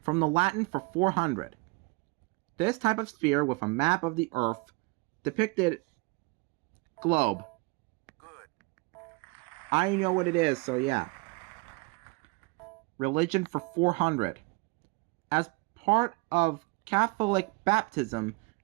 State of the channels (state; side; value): quieter; left; 26.5 dB